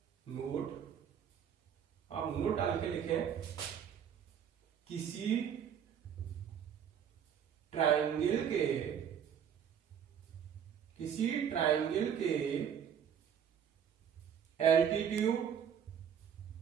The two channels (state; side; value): quieter; left; 8.4 dB